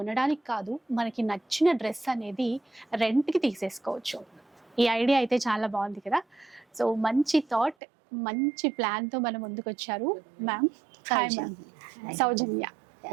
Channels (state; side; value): drops out; left; at 7.8 s